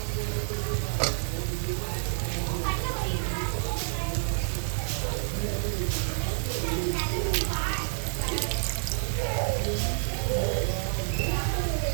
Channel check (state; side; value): silent; left; 59 dB below the other